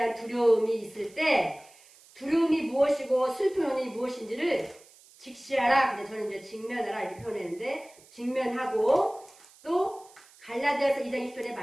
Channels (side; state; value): right; noise; hiss, 25 dB below the sound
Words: 두려움이 있을 때 두려움이 무엇이고 슬픔이 무엇인지를 직시하라. 근데 저는 이제 직면하라 이렇게 표현했는데 직면하고 또 갈라디아서 2장 20절의